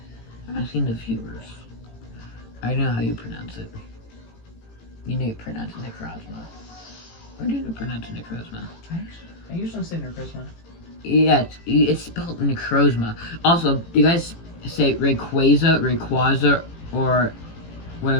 I'm asking the viewers. I know how you pronounce it. You need to pronounce it Necrozma. Or do you pronounce it Necrozma? I usually say Necrozma. Yeah, it's spelled Necrozma. Also, do you guys say Rayquaza, or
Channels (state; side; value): late; right; 18 ms